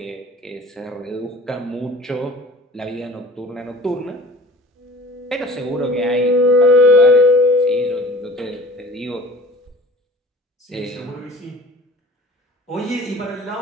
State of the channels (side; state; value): both; normal; correlation 0.44